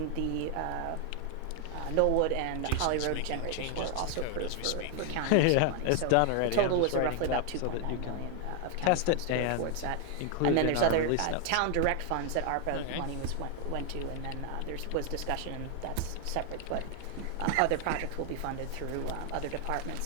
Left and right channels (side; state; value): both; different; correlation 0.00